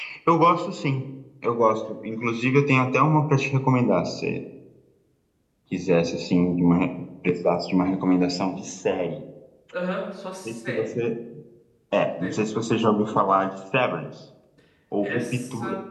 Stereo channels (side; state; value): both; identical; correlation 1.00